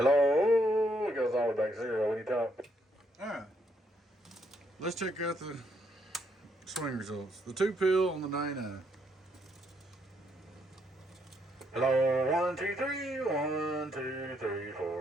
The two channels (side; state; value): both; normal; correlation 0.73